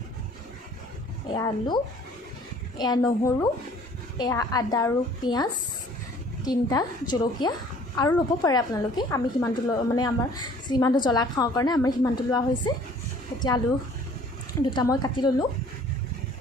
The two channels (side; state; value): both; normal; correlation 0.53